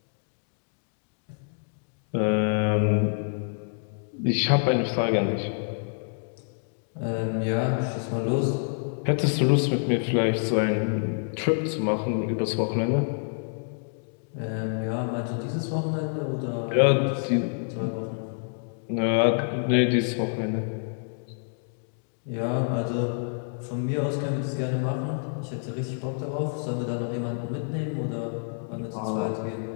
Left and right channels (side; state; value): right; silent; digital silence